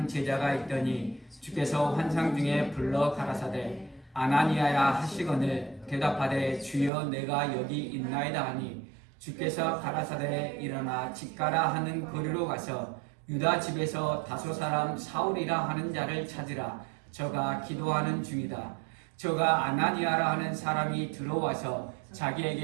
제자가 있더니 주께서 환상 중에 불러 가라사대 아나니아야 하시거늘 대답하되 주여 내가 여기 있나이다 하니 주께서 가라사대 일어나 집가라 하는 거리로 가서 유다 집에서 다소 사람 사울이라 하는 자를 찾으라. 저가 기도하는 중이다. 저가 아나니아라 하는 사람이 들어와서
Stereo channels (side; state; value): left; drops out; at 6.9 s